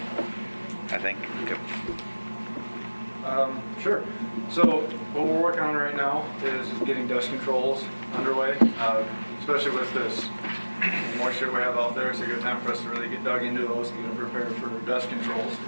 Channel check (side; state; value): both; inverted; correlation -1.00